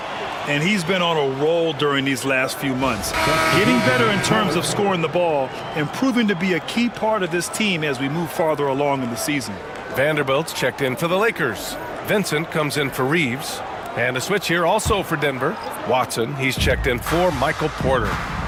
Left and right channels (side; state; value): both; identical; correlation 1.00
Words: And he's been on a roll during these last few months. Getting better in terms of scoring the ball and proving to be a key part of this team as we move farther along in the season. Vanderbilt's checked in for the Lakers. Vincent comes in for Reeves. And a switch here also for Denver. Watson, he's checked in for Michael Porter.